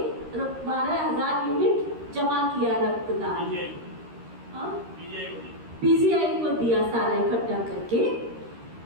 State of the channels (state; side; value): late; left; 13 ms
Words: 12,000 यूनिट जमा किया रक्तदान। पीजीआई को दिया सारा इकट्ठा करके,